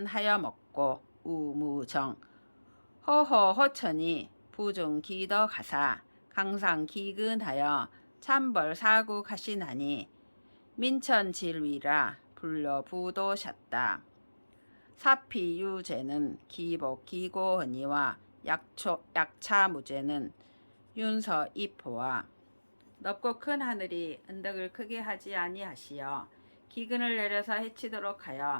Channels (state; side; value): inverted; both; correlation -1.00